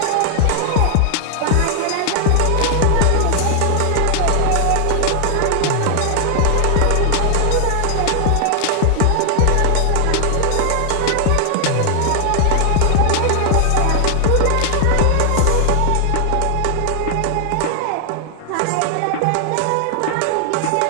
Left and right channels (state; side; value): different; both; correlation 0.00